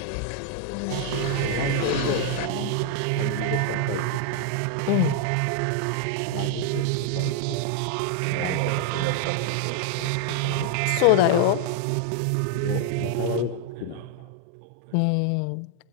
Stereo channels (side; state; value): both; different; correlation 0.00